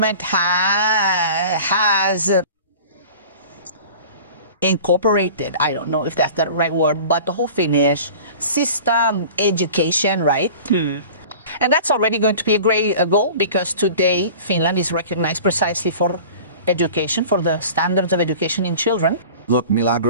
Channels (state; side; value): inverted; both; correlation -0.40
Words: has incorporated, I don't know if that's the right word, but the whole Finnish system education, right? And that's already going to be a great goal, because today Finland is recognized precisely for education, for the standards of education in children. Look,